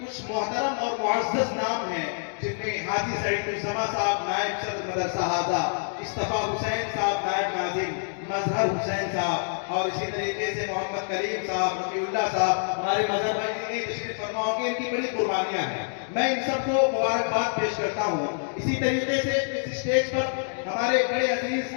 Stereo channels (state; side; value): silent; right; digital silence